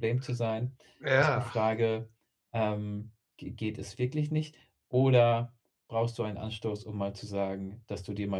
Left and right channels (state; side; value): identical; both; correlation 1.00